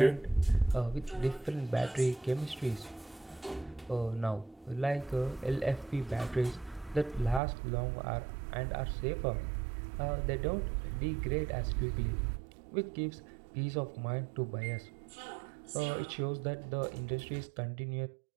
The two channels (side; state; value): left; drops out; at 7.4 s